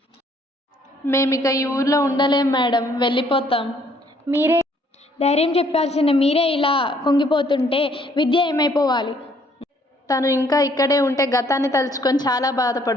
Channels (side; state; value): both; normal; correlation 0.64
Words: మేమిక ఈ ఊర్లో ఉండలేం మేడం, వెళ్ళిపోతాం. మీరే ధైర్యం చెప్పాల్సిన మీరే ఇలా కుంగిపోతుంటే విద్య ఏమైపోవాలి? తను ఇంకా ఇక్కడే ఉంటే గతాన్ని తలుచుకొని చాలా